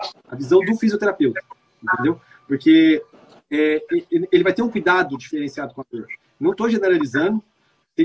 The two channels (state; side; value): identical; both; correlation 1.00